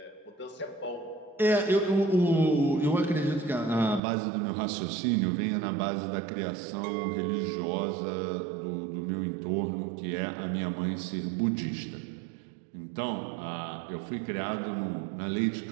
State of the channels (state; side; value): drops out; left; at 4.0 s